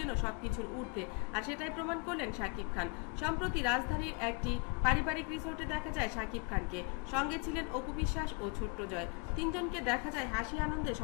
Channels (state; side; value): quieter; right; 33.1 dB